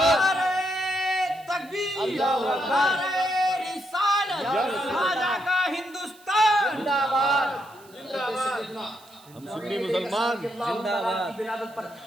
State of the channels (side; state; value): right; noise; hiss, 26 dB below the sound